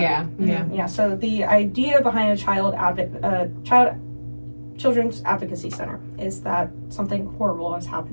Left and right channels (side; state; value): both; inverted; correlation -1.00